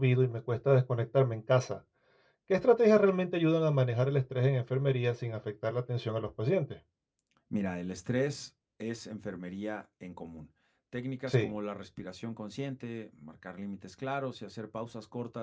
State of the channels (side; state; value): both; identical; correlation 1.00